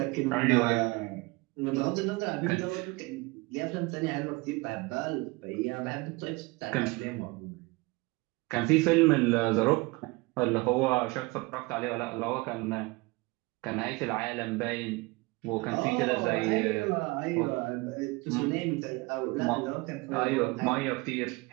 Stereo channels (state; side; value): quieter; left; 24.7 dB